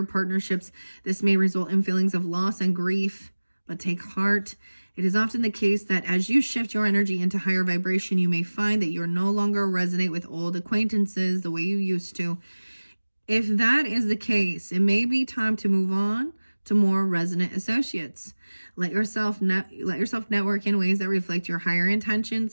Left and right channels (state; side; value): inverted; both; correlation -1.00